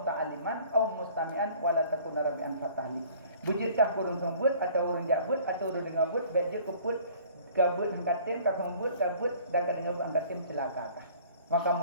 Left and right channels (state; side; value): inverted; both; correlation -0.52